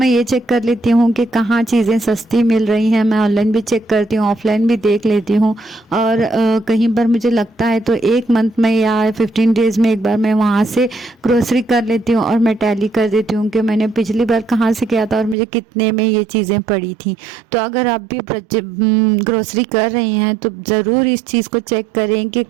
ये चेक कर लेती हूँ कि कहाँ चीज़ें सस्ती मिल रही हैं। मैं ऑनलाइन भी चेक करती हूँ, ऑफलाइन भी देख लेती हूँ। और कहीं पर मुझे लगता है तो एक मंथ में या 15 डेज़ में एक बार मैं वहाँ से ग्रोसरी कर लेती हूँ और मैं टैली कर देती हूँ कि मैंने पिछली बार कहाँ से किया था और मुझे कितने में ये चीज़ें पड़ी थी। तो अगर आप भी ग्रोसरी कर रही हैं तो ज़रूर इस चीज़ को चेक करें कि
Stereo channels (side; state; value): left; drops out; at 15.4 s